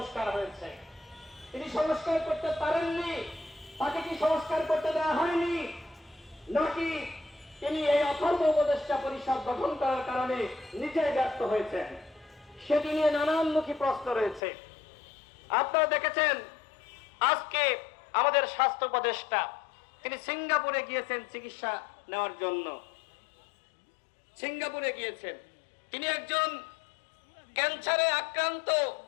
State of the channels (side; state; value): right; drops out; at 14.4 s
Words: হয়েছে? তিনি সংস্কার করতে পারেননি, তাকে কি সংস্কার করতে দেওয়া হয়নি, নাকি তিনি এই অথর্ব উপদেষ্টা পরিষদ গঠন করার কারণে নিজেই ব্যর্থ হয়েছেন? সেটি নিয়ে নানানমুখী প্রশ্ন রয়েছে। আপনারা দেখেছেন আজকে আমাদের স্বাস্থ্য উপদেষ্টা তিনি সিঙ্গাপুরে গিয়েছেন চিকিৎসা নেওয়ার জন্য। সিঙ্গাপুরে গিয়েছেন, তিনি একজন ক্যান্সারে আক্রান্ত